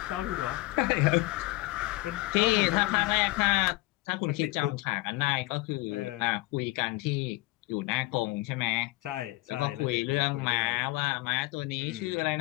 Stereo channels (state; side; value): quieter; right; 20.9 dB